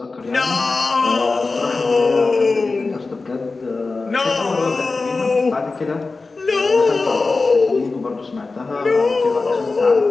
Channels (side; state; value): right; quieter; 3.8 dB